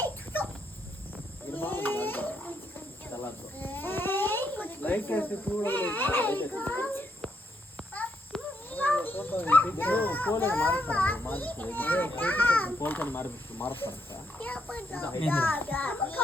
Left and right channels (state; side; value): normal; both; correlation 0.77